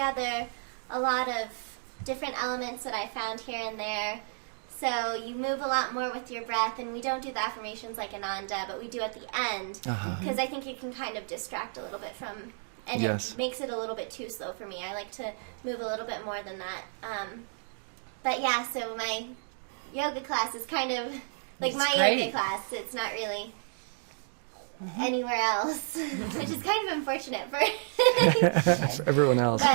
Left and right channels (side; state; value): left; silent; digital silence